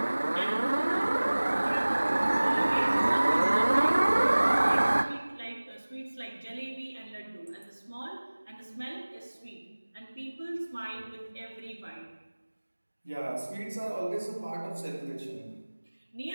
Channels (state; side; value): inverted; both; correlation -1.00